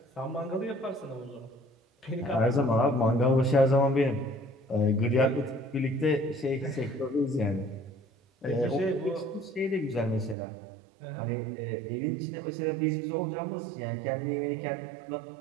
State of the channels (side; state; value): left; drops out; at 10.4 s